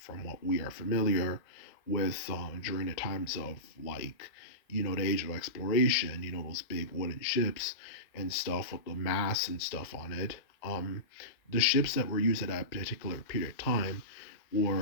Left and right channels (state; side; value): late; right; 1.8 ms